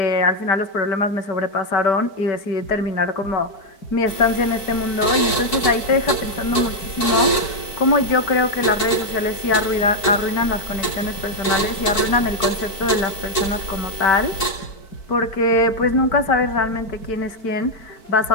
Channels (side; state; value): right; late; 4.6 ms